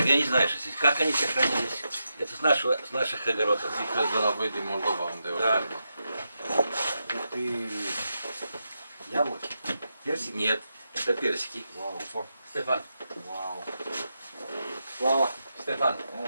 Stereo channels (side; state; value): both; inverted; correlation -0.86